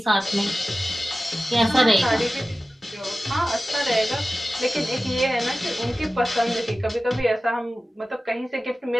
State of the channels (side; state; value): both; normal; correlation 0.95